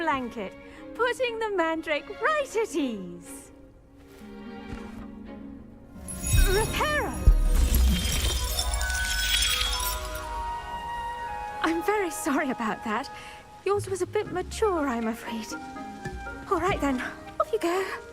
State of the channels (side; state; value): both; identical; correlation 1.00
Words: putting the mandrake right at ease. Reparo! I'm very sorry about that. Yours was a bit mature, I'm afraid. All right then, off you go.